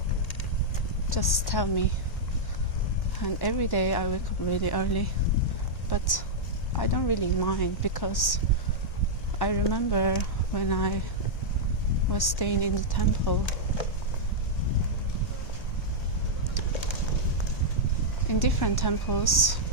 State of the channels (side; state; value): right; late; 1.1 ms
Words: Just tell me. And every day I wake up really early, but I don't really mind, because I remember when I was staying in the temple, in different temples,